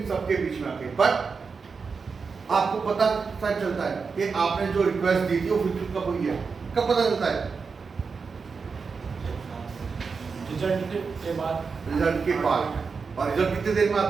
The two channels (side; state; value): left; quieter; 5.1 dB